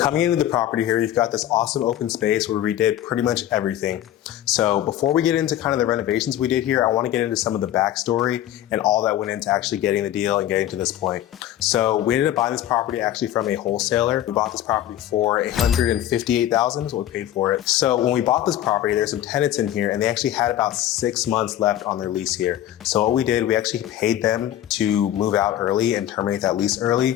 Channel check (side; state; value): right; quieter; 12.4 dB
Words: into the property here, you've got this awesome open space where we did pretty much everything. So before we get into kind of the renovations we did here, I want to get into some of the backstory and all that went into actually getting the deal and getting to this point. So we ended up buying this property actually from a wholesaler. We bought this property for $158,000 is what we paid for it. So when we bought this property, there's some tenants in here and they actually had about 6 months left on their lease here. So what we did, we actually paid them to move out early and terminate that lease